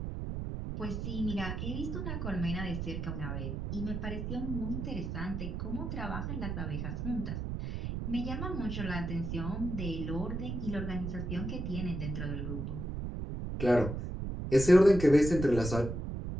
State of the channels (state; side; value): noise; right; rumble, 4 dB below the sound